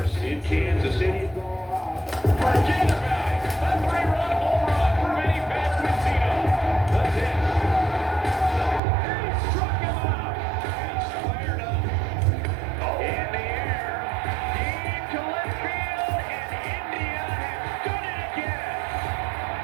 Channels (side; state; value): left; drops out; at 8.8 s